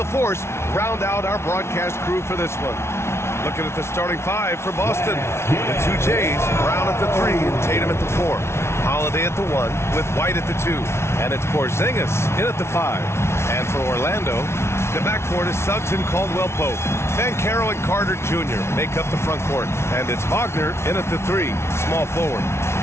round out our broadcast crew for this one. Looking at the starting five for Boston. The two Jays, Brown at the 3 and Tatum at the 4. Holiday at the 1 with White at the 2. And it's Porzingis in at the 5. And for Orlando, the backcourt is Suggs and Caldwell-Pope. Banchero and Carter Jr. make up the front court. And it's Wagner in at the 3, small forward.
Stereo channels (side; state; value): right; late; 0.13 ms